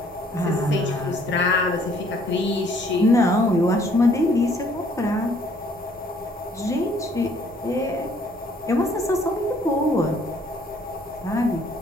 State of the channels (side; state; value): both; normal; correlation 0.62